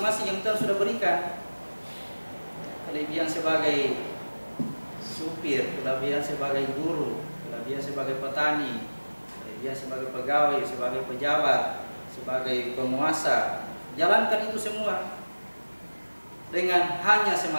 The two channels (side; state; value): both; inverted; correlation -1.00